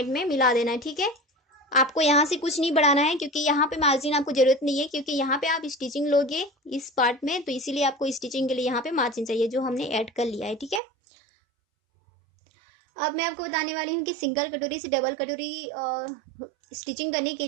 में मिला देना है। ठीक है, आपको यहाँ से कुछ नहीं बढ़ाना है, क्योंकि यहाँ पे मार्जिन आपको जरूरत नहीं है, क्योंकि यहाँ पे आप स्टिचिंग लोगे इस पार्ट में, तो इसीलिए आपको स्टिचिंग के लिए यहाँ पे मार्जिन चाहिए, जो हमने ऐड कर लिया है। ठीक है, अब मैं आपको बताने वाली हूँ कि सिंगल कटोरी से डबल कटोरी स्टिचिंग करने के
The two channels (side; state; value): left; drops out; at 10.8 s